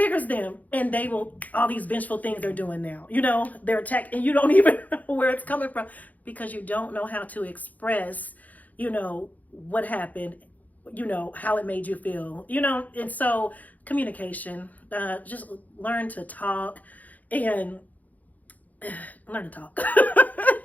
them, and they will, all these vengeful things they're doing now. They're attacked, and you don't even know where it's coming from because you don't know how to express, what happened, how it made you feel, and so communication, just learn to talk and learn to talk.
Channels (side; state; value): right; late; 0.079 ms